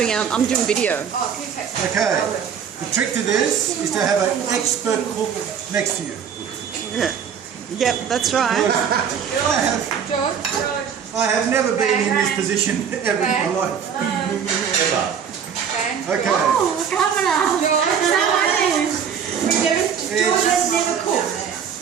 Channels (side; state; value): left; quieter; 7.5 dB